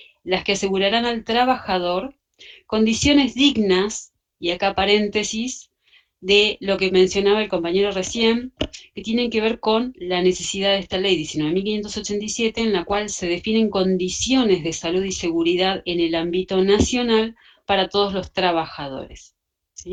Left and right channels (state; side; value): identical; both; correlation 1.00